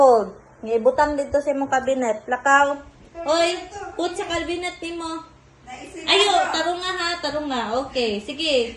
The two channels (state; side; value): identical; both; correlation 1.00